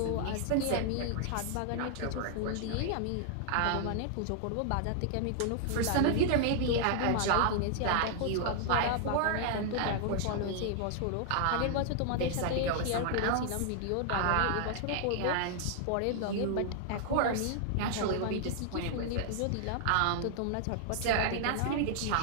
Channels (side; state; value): both; different; correlation -0.01